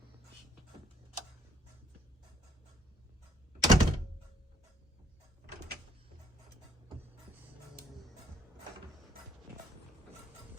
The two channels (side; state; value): both; normal; correlation 0.65